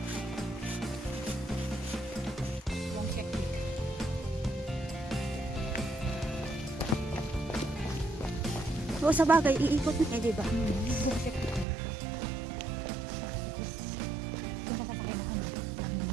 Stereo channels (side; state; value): left; drops out; at 11.7 s